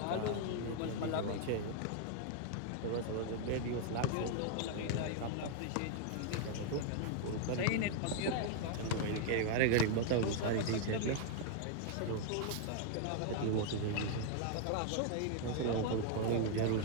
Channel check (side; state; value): both; different; correlation 0.00